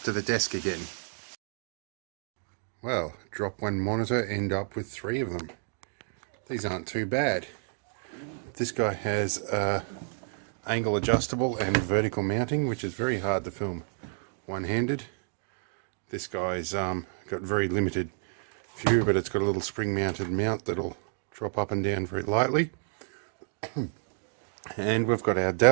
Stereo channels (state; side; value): silent; left; 58 dB below the other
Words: to the desk again. Well, drop one monitor, end up with 3 of them. These aren't too bad. This guy has angle adjustable and vertical mounting, which is very hard to film one-handed. This guy's got very limited view, but it's got a little spring-mounted mount that'll drop up and down very lightly. And we've got our